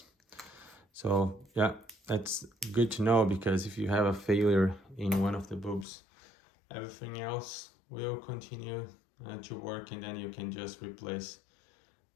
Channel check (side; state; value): right; drops out; at 5.9 s